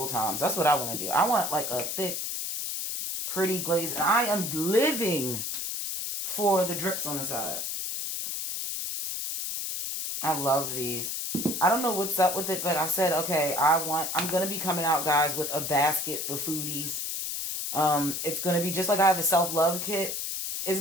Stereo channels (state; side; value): noise; left; hiss, 3 dB below the sound